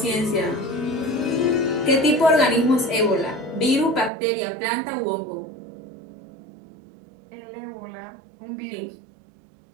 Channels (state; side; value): drops out; left; at 4.1 s